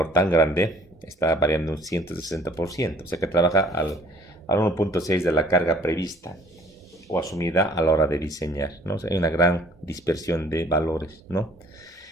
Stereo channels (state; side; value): normal; both; correlation 0.56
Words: tan grande está variando un 160%. O sea que trabaja al 1.6 de la carga prevista o asumida a la hora de diseñar, ¿no? O sea, hay una gran dispersión de valores, ¿no?